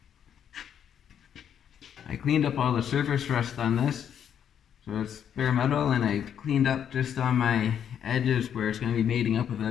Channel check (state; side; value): quieter; right; 8.9 dB